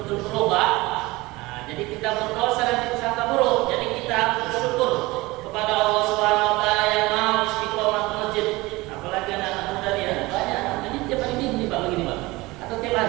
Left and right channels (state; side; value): quieter; left; 21.3 dB